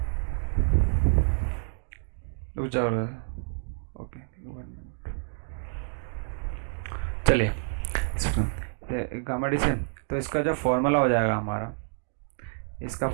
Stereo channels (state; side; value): silent; left; digital silence